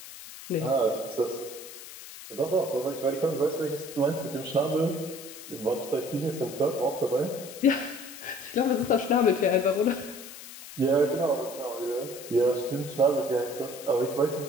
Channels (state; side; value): noise; left; hiss, 14 dB below the sound